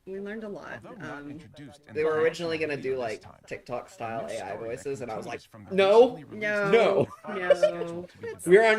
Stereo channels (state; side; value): identical; both; correlation 1.00